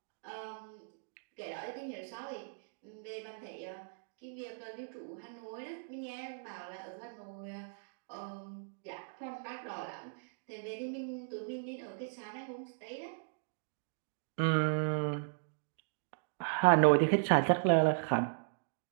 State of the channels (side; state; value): left; silent; digital silence